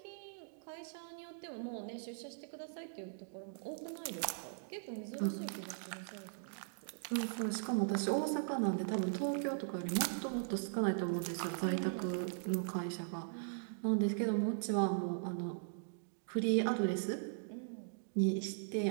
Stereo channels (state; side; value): silent; left; digital silence